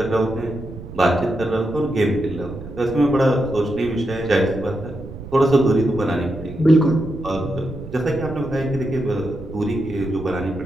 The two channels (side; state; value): right; noise; rumble, 12 dB below the sound